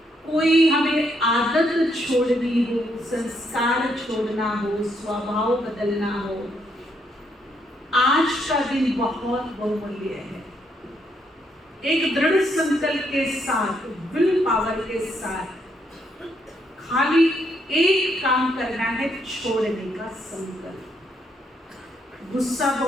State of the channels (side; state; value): both; normal; correlation 0.74